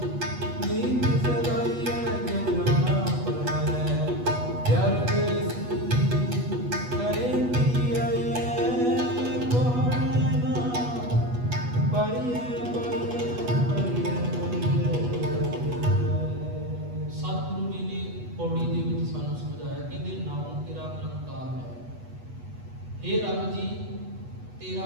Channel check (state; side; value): late; left; 8.2 ms